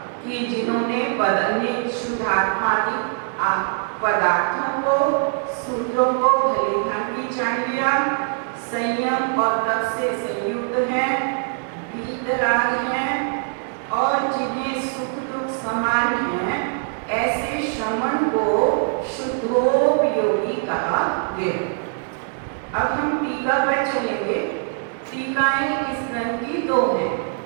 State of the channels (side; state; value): left; silent; 64 dB below the other